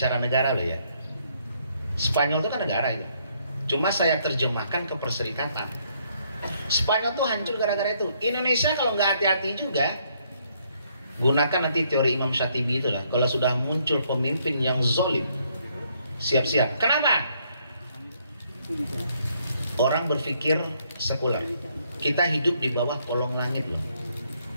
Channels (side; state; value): both; inverted; correlation -0.70